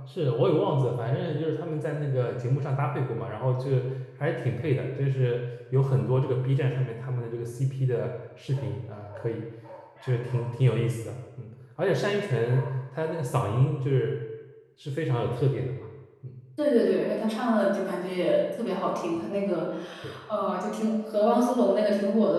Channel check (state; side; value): identical; both; correlation 1.00